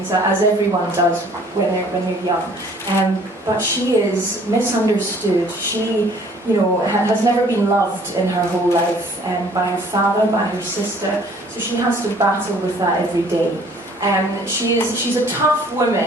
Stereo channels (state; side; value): normal; both; correlation 0.56